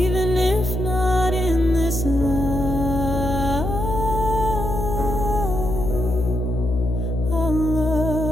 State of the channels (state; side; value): noise; left; hum, 3 dB below the sound